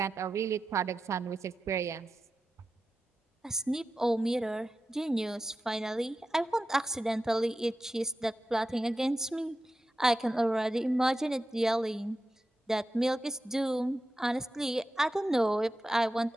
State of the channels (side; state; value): both; normal; correlation 0.92